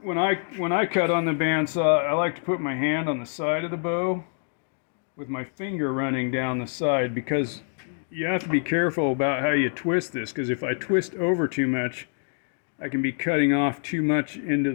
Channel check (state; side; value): silent; right; digital silence